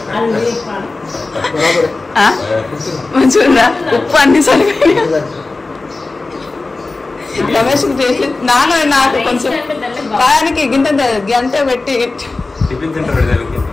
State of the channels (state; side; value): quieter; right; 3.5 dB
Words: మంచిగా ఉప్పు అన్ని సరిపోయి రమేష్ నాన్న నాకు కొంచెం బాగానికి గింత గంట పెట్టి టిఫిన్